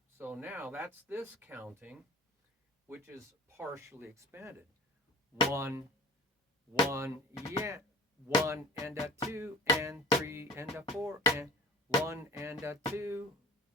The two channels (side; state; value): both; normal; correlation 0.41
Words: So now that's this counting, which is partially expanded. 1, 1, yeah. 1 and a 2 and 3 and a 4 and 1 and a 2